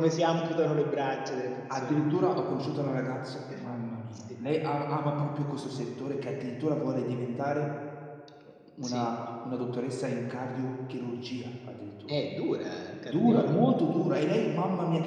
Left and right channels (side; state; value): both; identical; correlation 1.00